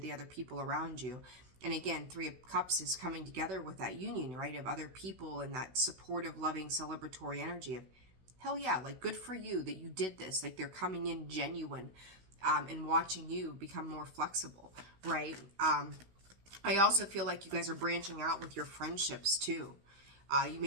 other people around you. And again, 3 of Cups is coming together with that union, right, of other people and that supportive, loving, celebratory energy of, hell yeah, like, good for you that you did this. Like, they're coming in genuine and watching you become more flexible, right? I also feel like you guys are branching out with your friendships too. You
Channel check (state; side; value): late; left; 16 ms